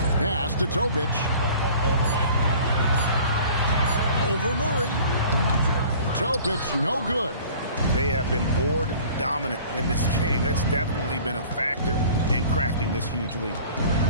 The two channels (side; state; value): both; inverted; correlation -0.47